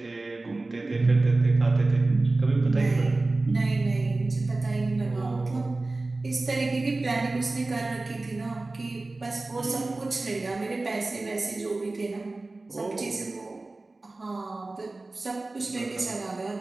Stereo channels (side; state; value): left; quieter; 3.2 dB